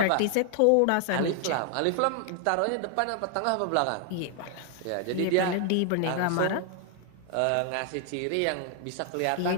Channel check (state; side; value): different; both; correlation 0.00